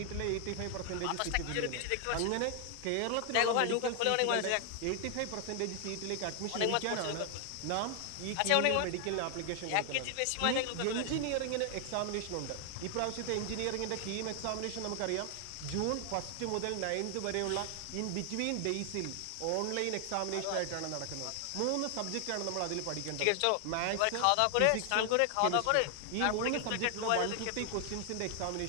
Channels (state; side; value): different; both; correlation 0.00